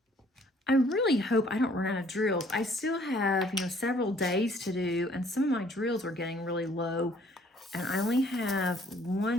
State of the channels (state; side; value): normal; both; correlation 0.60